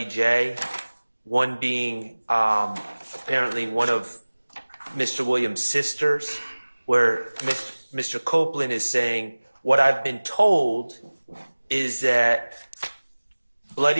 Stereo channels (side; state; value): both; inverted; correlation -1.00